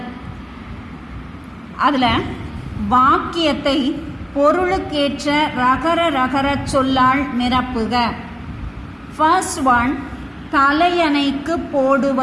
அதில் வாக்கியத்தை பொருளுக்கேற்ற ரகர ரகர சொல்லால் நிரப்புக. ஃபர்ஸ்ட் ஒன், தலையணைக்கு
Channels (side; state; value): both; identical; correlation 1.00